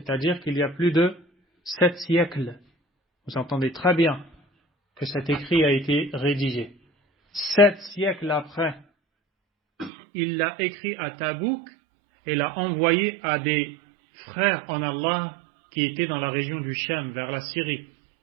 qu'il y a plus de 7 siècles. Vous entendez très bien que cet écrit a été rédigé. 7 siècles après, il l'a écrit à Tabouk et l'a envoyé à des frères en Allah qui étaient dans la région du Cham, vers la Syrie.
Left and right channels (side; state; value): left; drops out; at 9.9 s